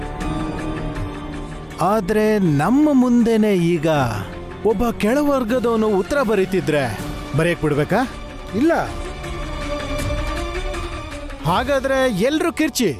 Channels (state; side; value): identical; both; correlation 1.00